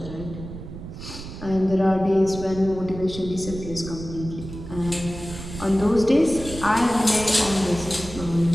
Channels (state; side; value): noise; right; rumble, 11 dB below the sound